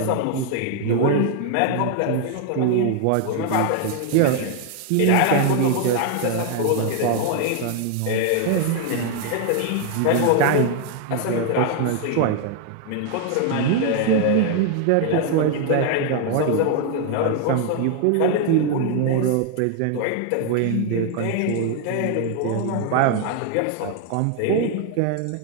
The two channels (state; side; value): different; both; correlation 0.00